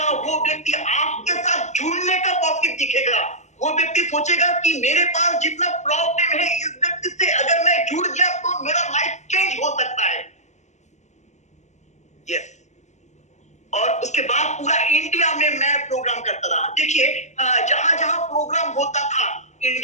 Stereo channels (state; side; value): late; right; 0.34 ms